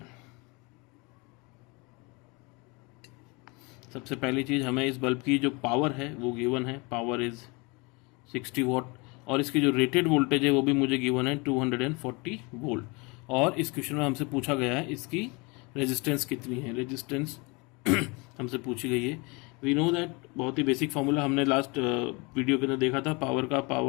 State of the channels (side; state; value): right; quieter; 28.1 dB